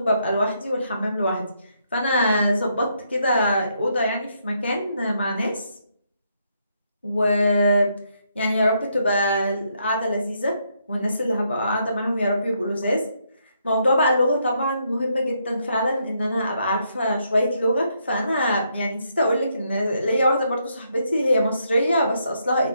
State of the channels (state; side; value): inverted; both; correlation -0.76